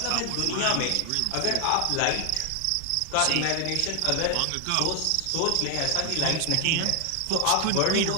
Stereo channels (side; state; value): both; different; correlation 0.00